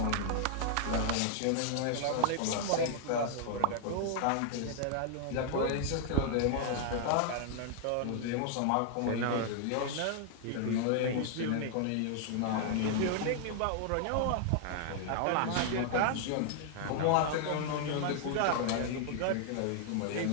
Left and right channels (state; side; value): different; both; correlation 0.00